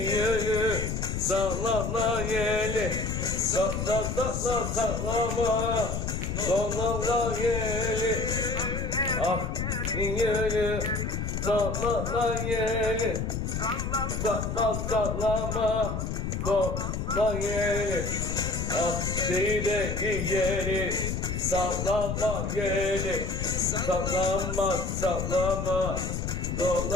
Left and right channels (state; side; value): noise; left; rumble, 2 dB below the sound